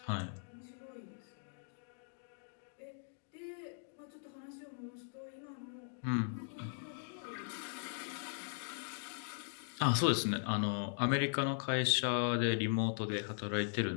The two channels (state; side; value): silent; right; digital silence